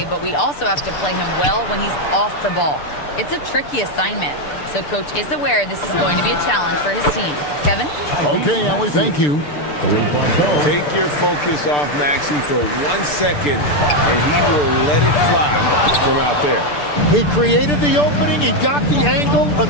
but we also have to play him well when he's off the ball. It's a tricky assignment, so Coach is aware this is going to be a challenge for his team. Kevin? Okay, Allie, thank you. Take your focus off Maxey for 1 second, and he will let it fly from out there. He created the opening. He got the angle.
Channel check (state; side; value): late; right; 6.8 ms